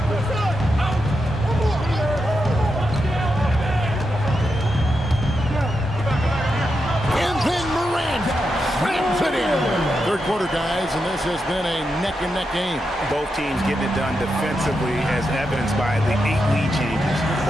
And then Morant slams it in. Third quarter, guys, and this has been a neck-and-neck game. Both teams getting it done defensively as evidenced by the 8 lead changes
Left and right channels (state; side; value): normal; both; correlation 0.86